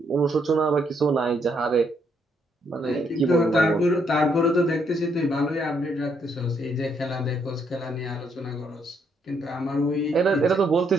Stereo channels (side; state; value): both; normal; correlation 0.73